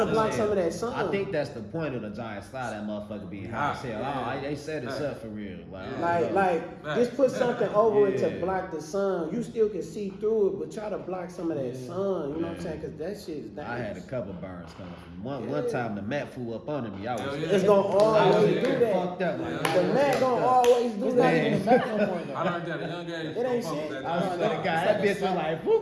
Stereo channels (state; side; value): identical; both; correlation 1.00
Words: to block Yeah. some of that sun. I think that's the point of the Giant Slide. That motherfucker being high as hell. Yeah. They set us up for real. Like, Right. just put something over it to Yeah. block the sun. You still can see through it, but try to block some of that sun. You know what I'm saying? Because that shit is dangerous. I had a couple burns coming from one time. The mat flew up under me. I was, Hell yeah. It's gonna I was always do getting that. fucked up. Like, The mat gonna always do It's not that. even a Mac no more though. I learned that at a young age. It ain't Fuck with shit. that I was Giant that Slide. guy. That bitch was like,